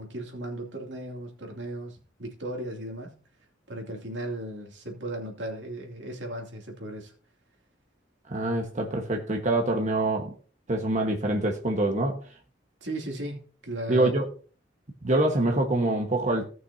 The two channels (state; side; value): normal; both; correlation 0.45